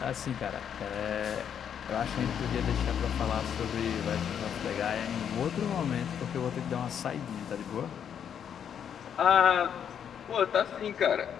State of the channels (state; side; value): quieter; right; 8.4 dB